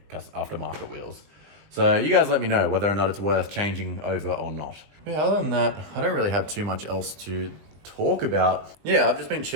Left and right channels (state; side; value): late; left; 20 ms